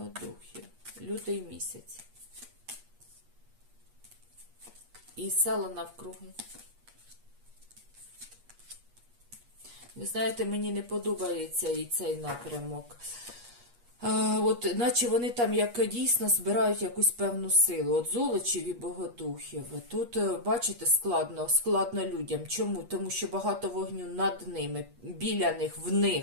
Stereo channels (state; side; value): late; left; 8.4 ms